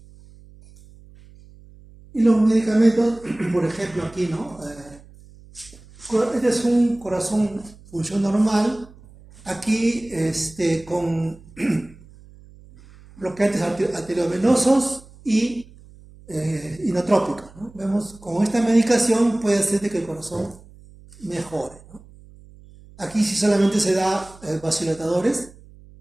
Y los medicamentos, por ejemplo, aquí, ¿no? Este es un corazón función normal. Aquí, con bloqueantes arteriovenosos y inotrópicos, ¿no? Vemos con esta medicación puede hacer que el corazón mejore, ¿no? Aquí si solamente se da vasodilatadores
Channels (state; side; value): noise; right; hum, 23 dB below the sound